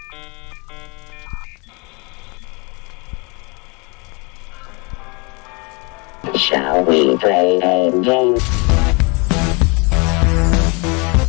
Shall we play a game?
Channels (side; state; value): right; quieter; 30.3 dB